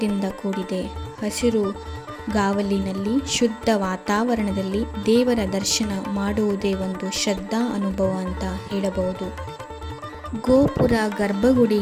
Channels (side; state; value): both; identical; correlation 1.00